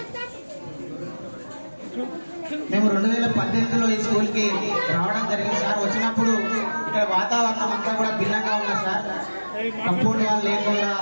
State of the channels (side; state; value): both; inverted; correlation -1.00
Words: మేము 2018లో ఈ స్కూల్కి రావడం జరిగింది సార్. వచ్చినప్పుడు ఇక్కడ వాతావరణం అంతా కూడా భిన్నంగా ఉంది సార్. కంపౌండ్ వాళ్ళు లేకుండా